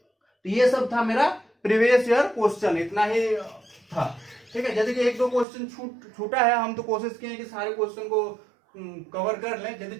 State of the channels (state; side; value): drops out; left; at 5.5 s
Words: ये सब था मेरा प्रीवियस ईयर क्वेश्चन, इतना ही था। ठीक है। यदि कि एक दो क्वेश्चन छूटा है, हम तो कोशिश किए कि सारे क्वेश्चन को कवर कर लें। यदि